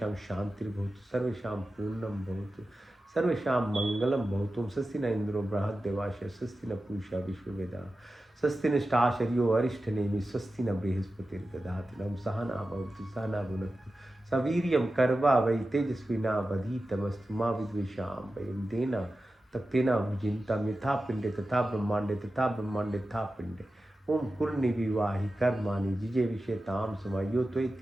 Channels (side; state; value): both; normal; correlation 0.93